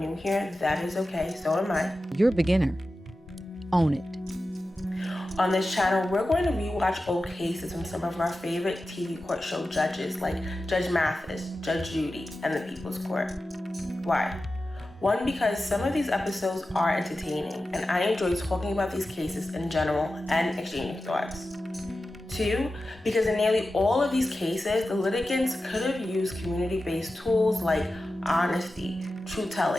here, that is okay, so am I. You're a beginner. Own it. On this channel, we're going to rewatch old cases from some of our favorite TV court show judges like Judge Mathis, Judge Judy, and the People's Court. Why? One, because some of these episodes are entertaining, and I enjoy talking about these cases in general and exchanging thoughts. Two, because in nearly all of these cases, the litigants could have used community-based tools like honesty,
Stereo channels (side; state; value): both; normal; correlation 0.93